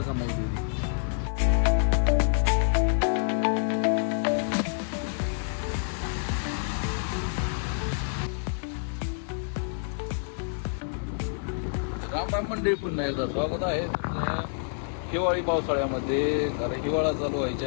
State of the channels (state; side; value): silent; right; digital silence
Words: कमावते. राम मंडळी, पुन्हा एकदा स्वागत आहे तुमचं हिवाळी पावसाळ्यामध्ये. कारण हिवाळा चालू